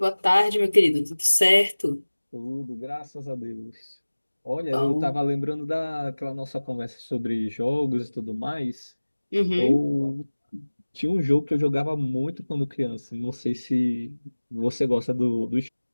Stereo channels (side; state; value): both; inverted; correlation -1.00